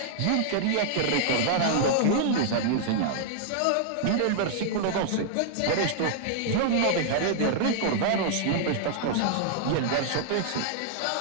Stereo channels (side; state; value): both; different; correlation -0.01